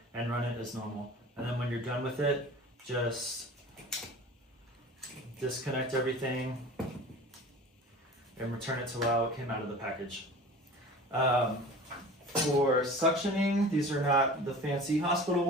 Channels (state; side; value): normal; both; correlation 0.40